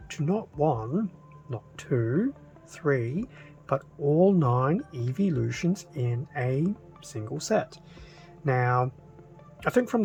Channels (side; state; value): both; identical; correlation 1.00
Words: to not one, not two, three, but all 9 Eeveelutions in a single set? Now, I think from